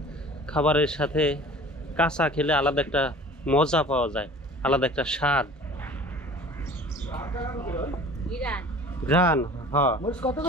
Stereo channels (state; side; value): normal; both; correlation 0.44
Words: খাবারের সাথে কাঁচা খেলে আলাদা একটা মজা পাওয়া যায়, আলাদা একটা স্বাদ। ঘ্রাণ। হ্যাঁ, মরিচ কত